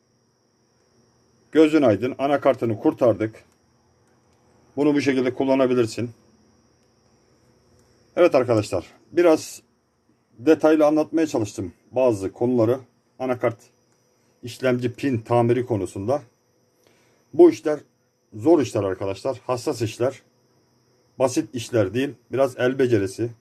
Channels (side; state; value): both; identical; correlation 1.00